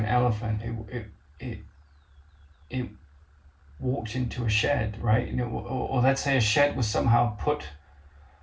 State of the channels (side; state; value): both; identical; correlation 1.00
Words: elephant. It walked into a shed, right? Or let's say a shed was somehow put